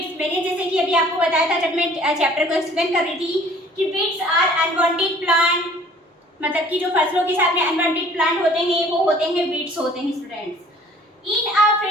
जैसे कि अभी आपको बताया था जब मैं चैप्टर को एक्सप्लेन कर रही थी कि वीड्स आर अनवांटेड प्लांट, मतलब कि जो फसलों के साथ में अनवांटेड प्लांट होते हैं वो होते हैं वीड्स होते हैं students. In a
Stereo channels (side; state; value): both; normal; correlation 0.53